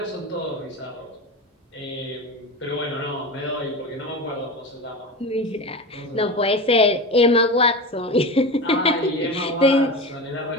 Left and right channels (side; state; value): both; normal; correlation 0.25